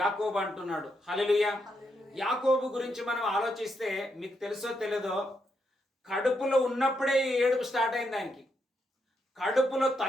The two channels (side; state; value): both; normal; correlation 0.80